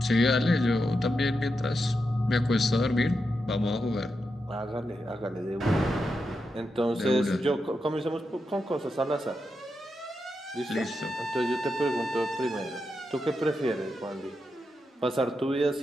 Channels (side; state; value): both; normal; correlation 0.86